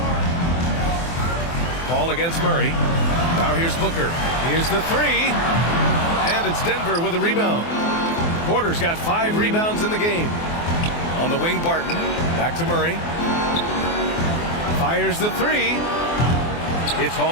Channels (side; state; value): right; late; 24 ms